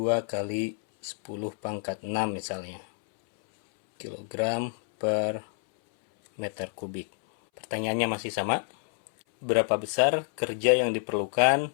kali 10 pangkat 6 misalnya kilogram per meter kubik. Pertanyaannya masih sama. Berapa besar kerja yang diperlukan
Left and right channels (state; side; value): silent; right; 59 dB below the other